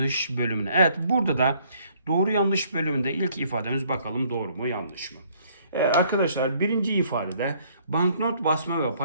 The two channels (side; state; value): both; inverted; correlation -0.63